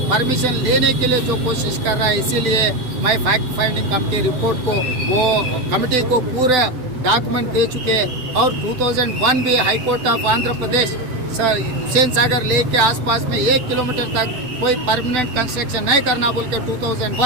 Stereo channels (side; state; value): left; late; 7.9 ms